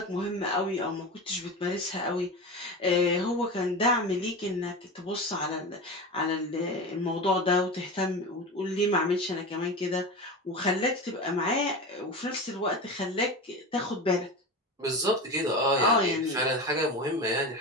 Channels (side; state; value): both; normal; correlation 0.26